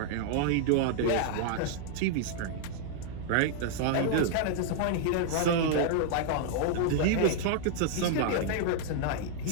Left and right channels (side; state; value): both; different; correlation 0.00